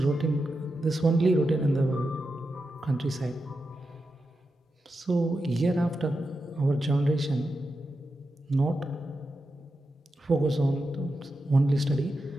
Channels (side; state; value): both; normal; correlation 0.89